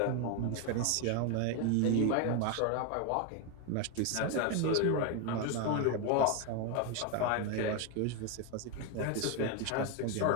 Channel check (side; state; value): both; different; correlation 0.02